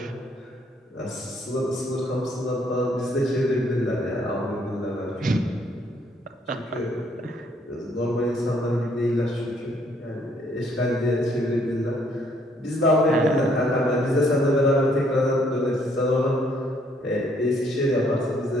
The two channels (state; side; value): normal; both; correlation 0.67